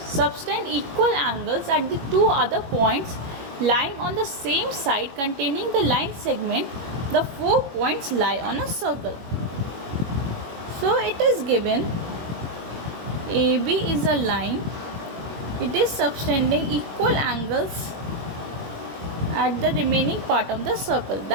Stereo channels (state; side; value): late; left; 22 ms